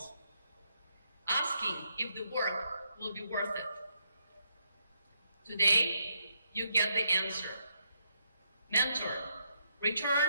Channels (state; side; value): inverted; both; correlation -0.77